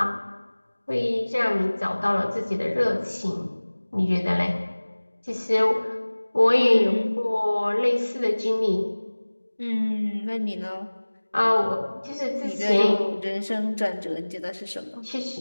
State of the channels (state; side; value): inverted; both; correlation -1.00